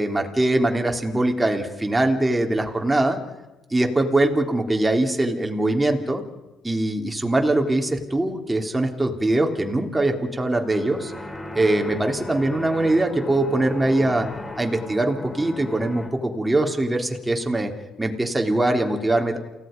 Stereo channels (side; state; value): both; normal; correlation 0.92